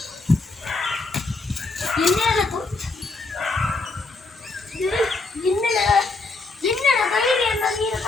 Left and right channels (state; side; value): quieter; right; 3.6 dB